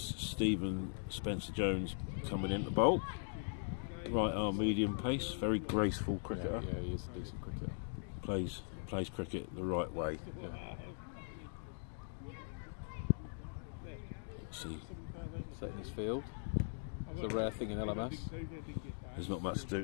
Stephen Spencer Jones coming into bowl. Right arm, medium pace, very graceful cricketer. Yeah, he is a decent cricketer. Plays cricket the right way. Yeah. Let's see. Setting his field. It's a rare thing in LMS. There's not much to do,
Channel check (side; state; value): right; silent; digital silence